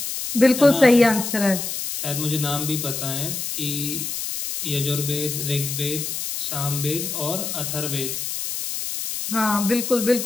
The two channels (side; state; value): left; noise; hiss, 4 dB below the sound